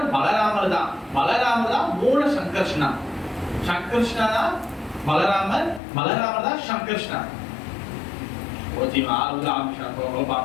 பலராமர் தான் மூல சங்கர்ஷ்ணா. சங்கர்ஷ்ணா தான் பலராமர் தான் சங்கர்ஷ்ணா. ஓஜிமா ஆறுல ஆம்ஷா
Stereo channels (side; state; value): right; drops out; at 5.8 s